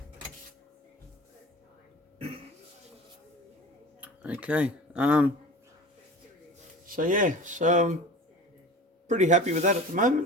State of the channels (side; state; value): both; normal; correlation 0.37